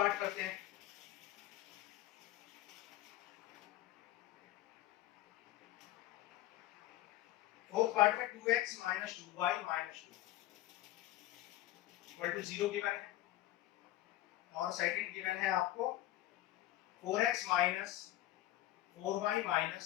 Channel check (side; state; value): right; quieter; 15.2 dB